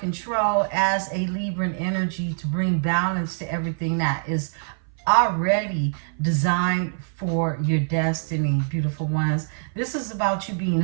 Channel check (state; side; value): silent; left; 60 dB below the other